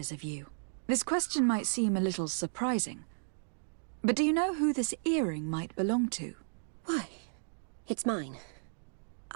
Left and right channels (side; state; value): left; silent; digital silence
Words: of you. This question might seem a little surprising, but do you know who this earring might belong to? Why, it's mine.